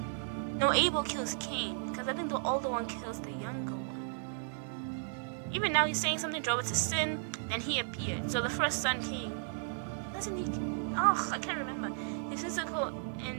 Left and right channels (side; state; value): left; silent; digital silence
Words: No, Abel kills Cain, because I think the older one kills the younger one. Even now he's saying something drove it to sin, then he appeared. So the first son, Cain, doesn't he? I can't remember. His physical